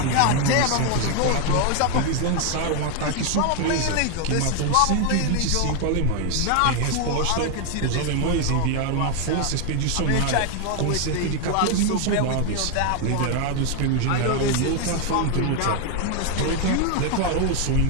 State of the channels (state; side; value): different; both; correlation 0.01